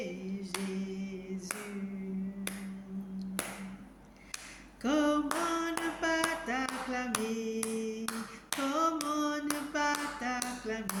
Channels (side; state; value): both; identical; correlation 1.00